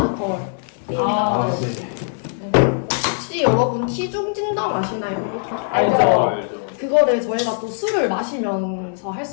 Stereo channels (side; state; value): right; silent; 65 dB below the other